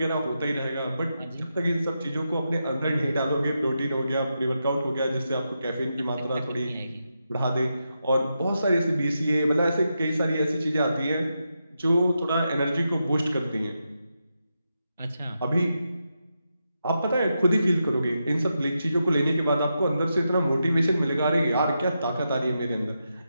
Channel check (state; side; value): inverted; both; correlation -0.86